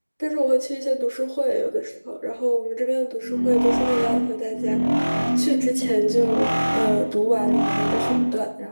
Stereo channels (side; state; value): both; inverted; correlation -1.00